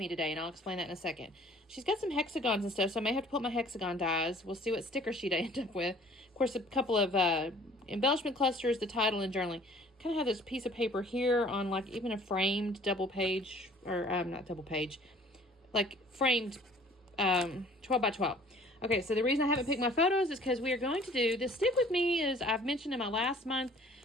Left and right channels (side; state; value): both; normal; correlation 0.53